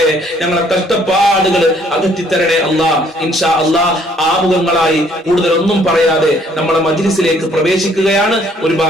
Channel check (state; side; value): normal; both; correlation 0.63